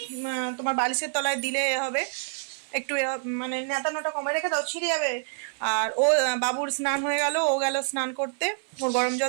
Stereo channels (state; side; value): silent; left; 60 dB below the other